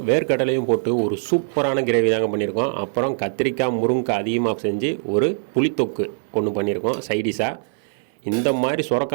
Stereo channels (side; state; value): left; silent; digital silence